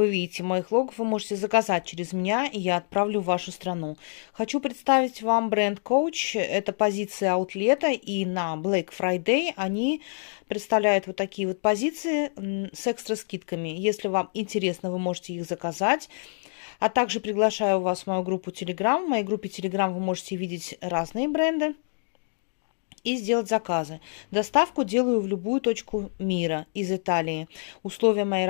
видите в моих логах, вы можете заказать через меня, и я отправлю в вашу страну. Хочу представить вам бренд Coach, это позиция аутлета, и на Black Friday они представляют вот такие вот позиции с экстра скидками. Если вам интересно, вы можете их заказать. А также приглашаю вас в мою группу Telegram. В моей группе Telegram вы можете видеть разные бренды и сделать заказы. Доставку делаю в любую точку мира из Италии. Условия моей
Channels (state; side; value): silent; right; 60 dB below the other